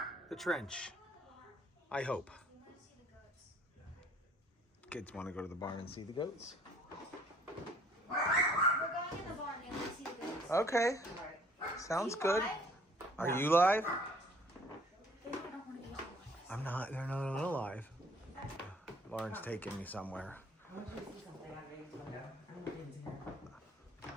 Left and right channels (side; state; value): both; normal; correlation 0.58